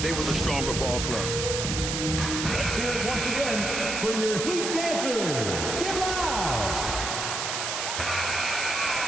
were the stronger ball club. Let's hear it once again for your Heat dancers. Get loud!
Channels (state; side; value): noise; right; hiss, 2 dB below the sound